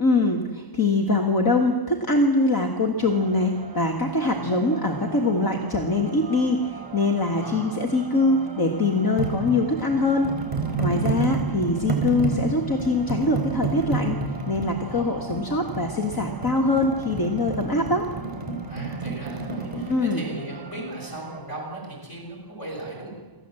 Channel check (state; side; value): late; right; 1.0 ms